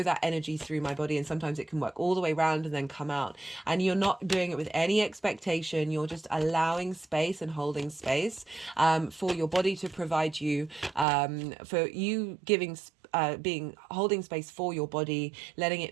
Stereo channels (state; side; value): drops out; left; at 11.1 s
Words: that energy through my body. And sometimes it can work all the way around and then come out, and you're not doing it with any expectation. You're just allowing space and holding space for your body to provide you, for you giving being holding space for your body, letting